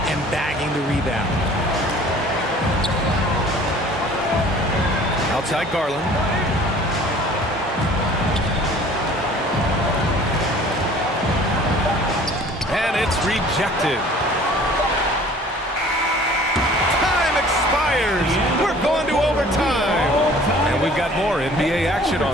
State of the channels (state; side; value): normal; both; correlation 0.50